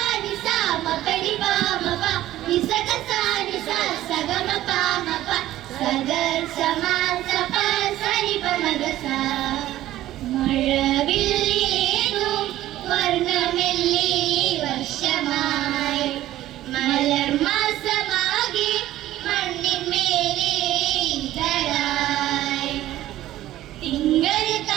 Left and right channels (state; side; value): quieter; left; 14.3 dB